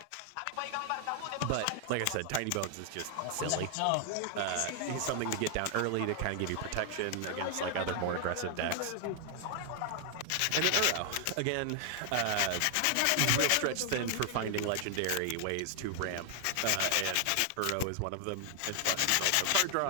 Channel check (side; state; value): both; different; correlation 0.00